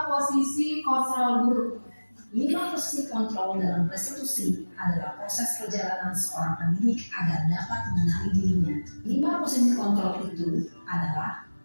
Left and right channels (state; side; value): inverted; both; correlation -1.00